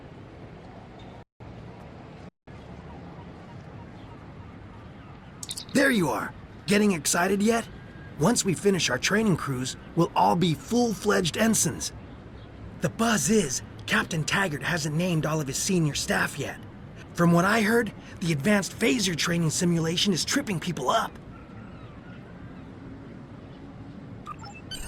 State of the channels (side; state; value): both; identical; correlation 1.00